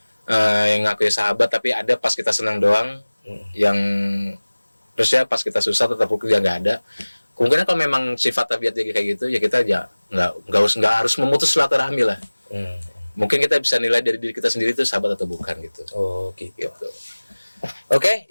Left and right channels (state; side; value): inverted; both; correlation -1.00